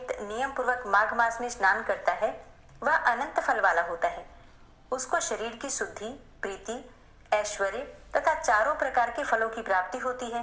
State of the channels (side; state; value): both; identical; correlation 1.00